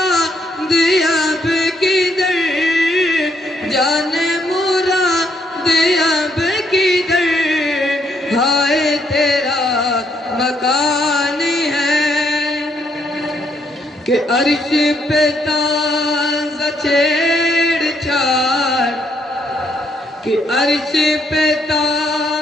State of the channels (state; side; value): normal; both; correlation 0.73